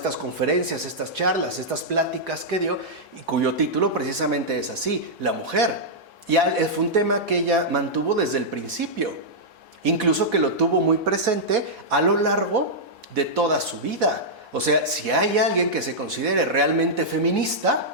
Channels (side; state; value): both; normal; correlation -0.09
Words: conferencias, estas charlas, estas pláticas que dio, y cuyo título precisamente es así, La mujer. Y fue un tema que ella mantuvo desde el principio, incluso que lo tuvo muy presente a lo largo de toda su vida. O sea, si hay alguien que se considere realmente